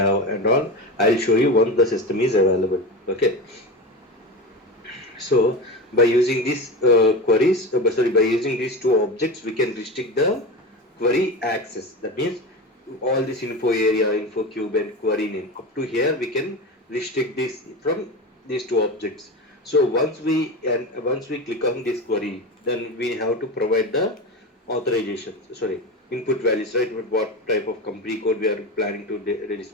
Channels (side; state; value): both; normal; correlation 0.25